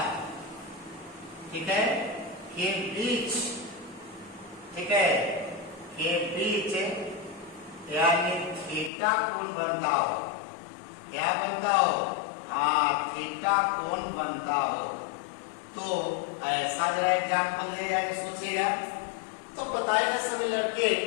ठीक है, के बीच, ठीक है, के बीच यानी थीटा कोण बनता हो, क्या बनता हो हाँ थीटा कोण बनता हो, तो ऐसा जरा एग्जाम्पल ले जाके सोचिएगा। तो बताएंगे सभी लड़के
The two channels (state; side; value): drops out; right; at 8.9 s